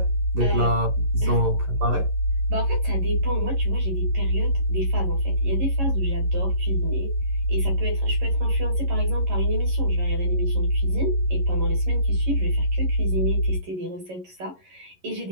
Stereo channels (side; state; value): left; late; 11 ms